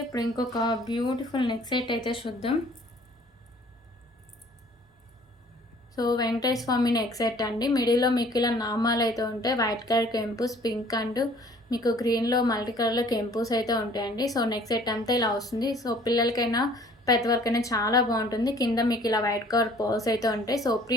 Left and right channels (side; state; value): both; normal; correlation 0.54